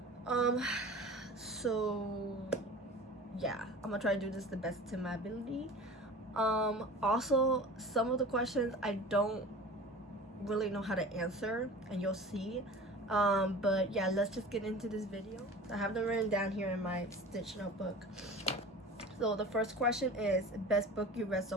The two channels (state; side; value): normal; both; correlation 0.39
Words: So yeah, I'm gonna try to do this the best to my ability. Also, some of the questions I don't really know how to answer, and you'll see. But yeah, let's just get into this video. I have them written down here in my Stitch notebook. So the first question is best book you read